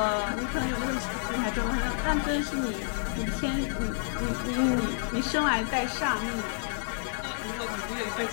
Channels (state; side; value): silent; right; 58 dB below the other